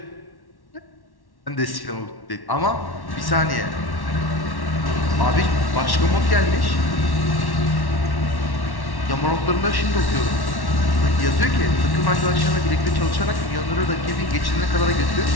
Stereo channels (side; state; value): right; late; 1.1 ms